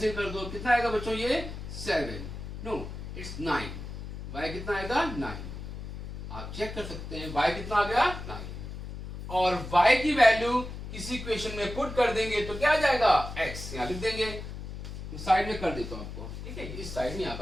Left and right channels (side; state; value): left; noise; hum, 9 dB below the sound